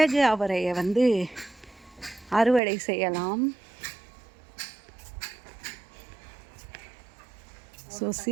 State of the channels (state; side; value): drops out; left; at 2.6 s